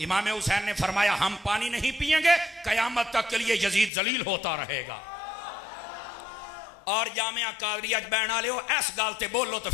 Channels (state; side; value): drops out; right; at 3.9 s